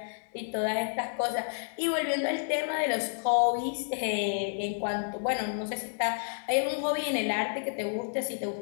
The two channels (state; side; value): silent; right; digital silence